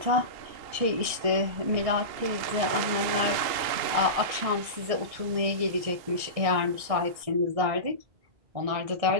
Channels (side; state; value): left; late; 1.6 ms